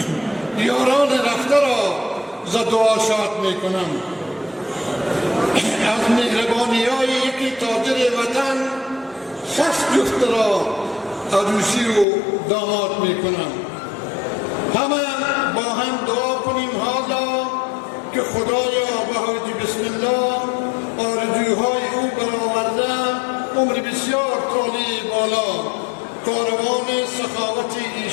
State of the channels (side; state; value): right; drops out; at 12.1 s